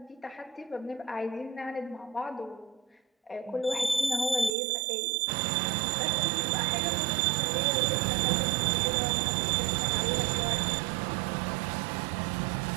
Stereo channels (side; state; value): left; drops out; at 4.5 s